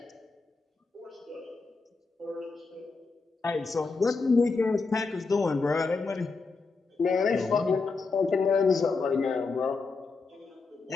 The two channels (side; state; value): right; quieter; 4.3 dB